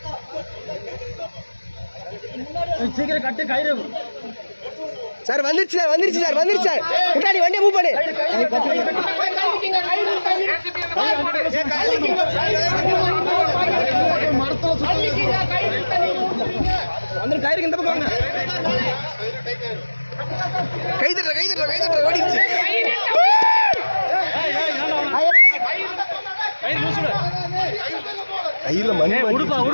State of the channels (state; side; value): inverted; both; correlation -1.00